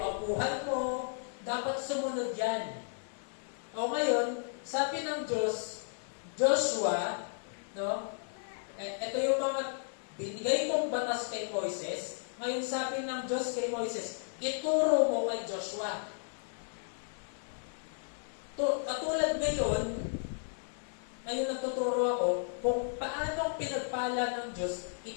mo. Dapat sumunod yan. O ngayon, sabi ng Diyos, Joshua, no? Ito yung mga binigay kong batas kay Moises. Ngayon sabi ng Diyos kay Moises, ituro mo kay Joshua. Katulad ngayon nagtuturo ako kung paano pinagpala ng Diyos,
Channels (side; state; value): right; silent; 55 dB below the other